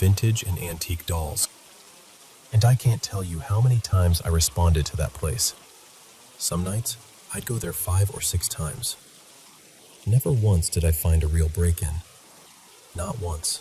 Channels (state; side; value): identical; both; correlation 1.00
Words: and antique dolls, and I can't tell you how many times I responded to that place. Some nights, I'd go there 5 or 6 times. Never once did I find a real break-in. Not once.